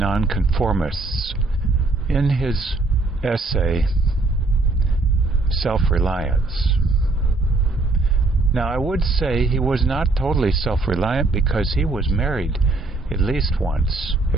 in his essay, Self-Reliance. Now, I would say he was not totally self-reliant because he was married at least once,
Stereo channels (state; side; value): quieter; left; 3.3 dB